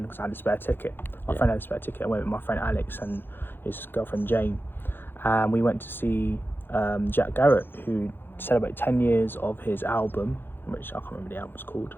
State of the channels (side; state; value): right; late; 0.10 ms